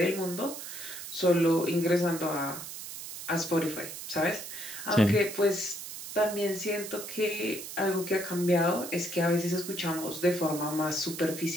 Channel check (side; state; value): right; noise; hiss, 10 dB below the sound